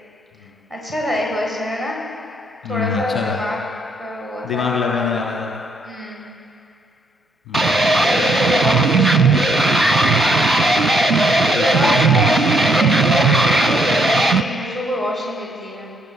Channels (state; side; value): normal; both; correlation 0.72